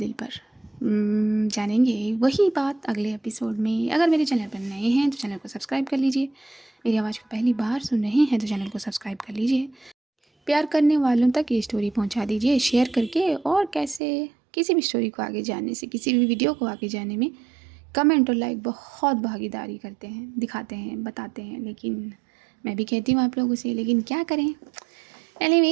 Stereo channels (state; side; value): drops out; left; at 14.0 s